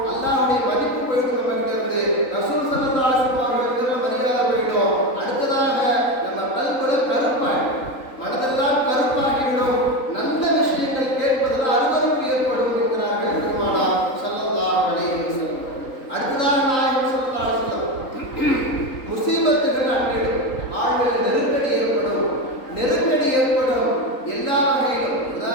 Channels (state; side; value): late; right; 3.8 ms